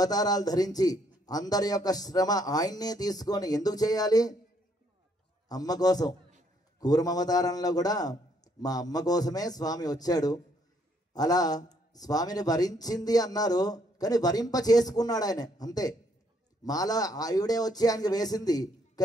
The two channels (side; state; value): both; normal; correlation 0.69